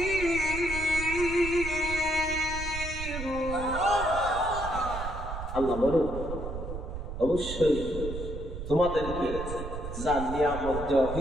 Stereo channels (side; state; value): right; noise; rumble, 7 dB below the sound